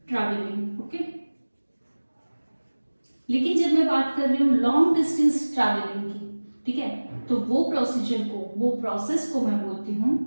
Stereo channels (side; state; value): both; inverted; correlation -1.00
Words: ट्रैवलिंग, ओके। लेकिन जब मैं बात कर रही हूँ लॉन्ग डिस्टेंस ट्रैवलिंग की, ठीक है, तो वो प्रोसीजर को, वो प्रोसेस को मैं बोलती हूँ